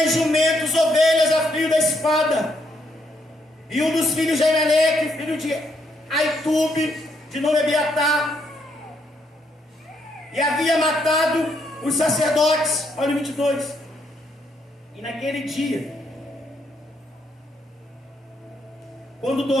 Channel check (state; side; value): normal; both; correlation 0.74